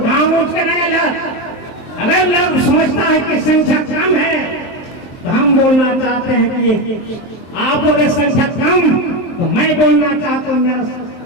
उठ कर आएगा। अगर लोग समझता है कि संख्या कम है, तो हम बोलना चाहते हैं कि आप बोले संख्या कम, तो मैं बोलना चाहता हूँ मेरा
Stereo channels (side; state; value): right; late; 23 ms